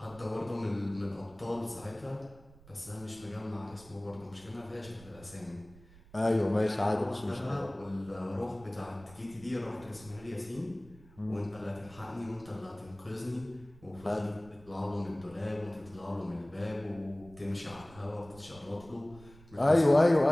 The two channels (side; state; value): right; noise; rumble, 22 dB below the sound